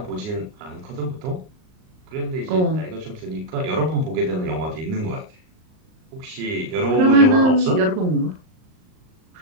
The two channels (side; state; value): left; late; 38 ms